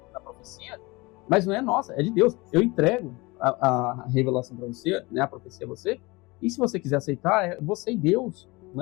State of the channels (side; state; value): right; quieter; 24.0 dB